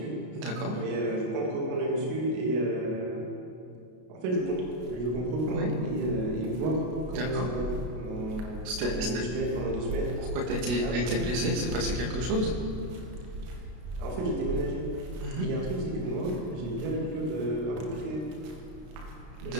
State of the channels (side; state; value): left; late; 33 ms